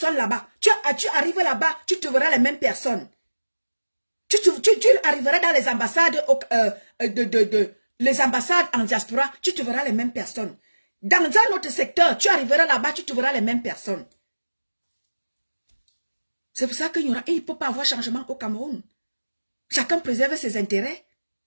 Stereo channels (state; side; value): inverted; both; correlation -1.00